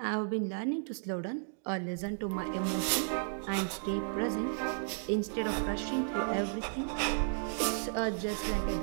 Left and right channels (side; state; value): left; silent; digital silence